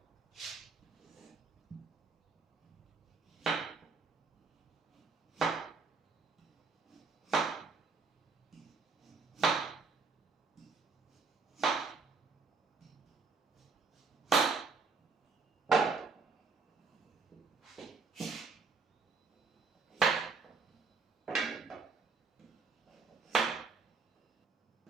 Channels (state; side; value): quieter; left; 4.4 dB